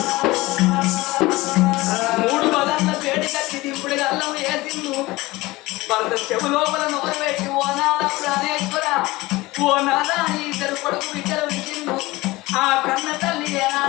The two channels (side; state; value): right; quieter; 20.3 dB